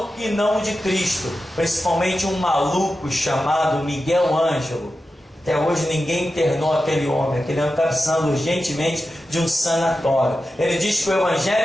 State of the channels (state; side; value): normal; both; correlation 0.92